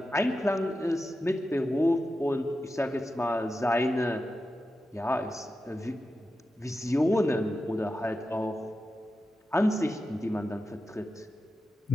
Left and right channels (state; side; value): normal; both; correlation 0.91